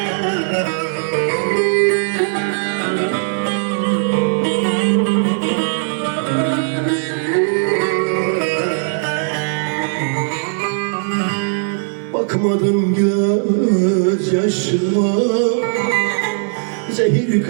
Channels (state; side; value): silent; left; 67 dB below the other